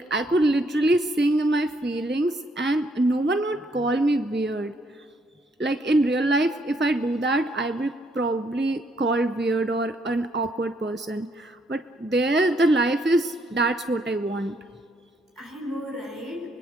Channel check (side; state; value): both; normal; correlation 0.71